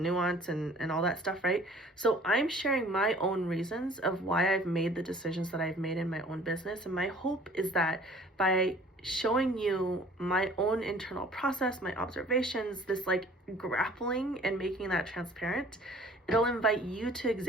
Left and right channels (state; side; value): normal; both; correlation 0.51